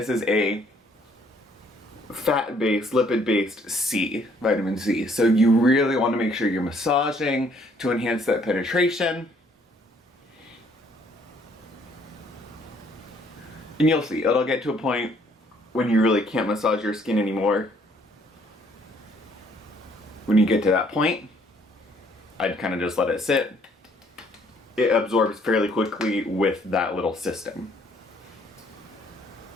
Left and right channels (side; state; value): both; normal; correlation 0.64